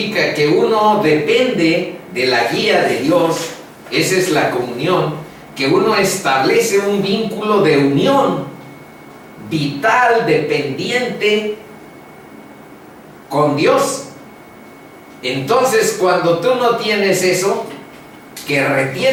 que uno depende de la guía de Dios, esa es la comunión, que uno establece un vínculo de unión vital, dependiente con Dios. Entonces, cuando tú no tienes eso, que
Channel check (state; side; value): identical; both; correlation 1.00